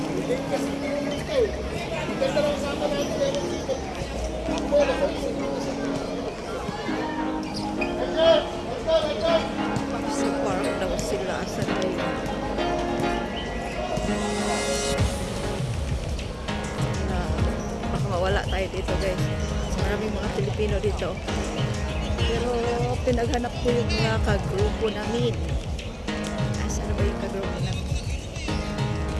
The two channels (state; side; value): identical; both; correlation 1.00